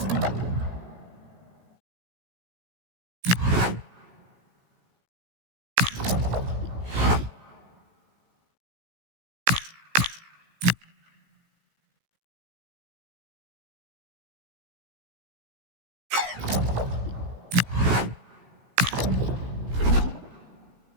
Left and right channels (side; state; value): left; late; 17 ms